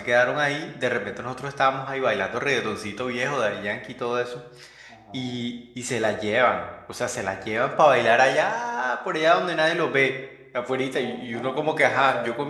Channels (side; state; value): both; identical; correlation 1.00